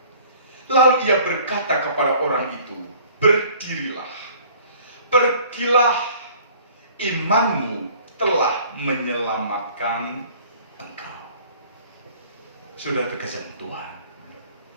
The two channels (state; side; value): inverted; both; correlation -0.52